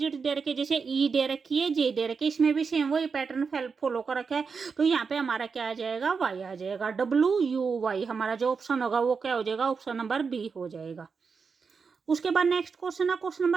दे रखे, जैसे ई दे रखी है, जे दे रखी है, इसमें भी सेम वही पैटर्न फॉलो कर रखा है, तो यहाँ पे हमारा क्या आ जाएगा, वाई आ जाएगा, WUY। हमारा जो ऑप्शन होगा वो क्या हो जाएगा, ऑप्शन नंबर बी हो जाएगा। उसके बाद नेक्स्ट क्वेश्चन है, क्वेश्चन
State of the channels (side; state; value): left; quieter; 5.4 dB